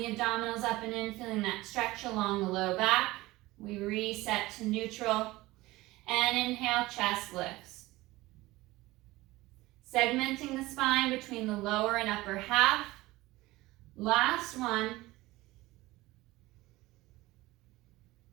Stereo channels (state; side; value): quieter; left; 19.2 dB